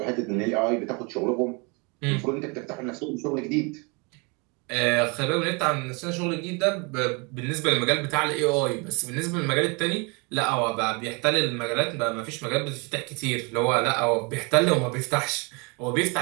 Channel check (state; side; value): quieter; left; 30.9 dB